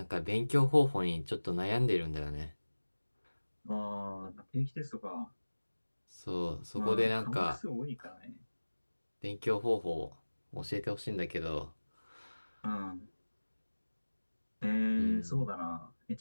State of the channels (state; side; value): inverted; both; correlation -1.00